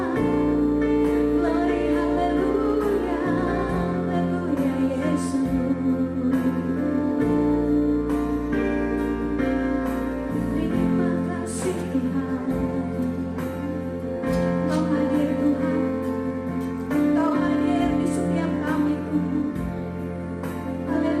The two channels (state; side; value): identical; both; correlation 1.00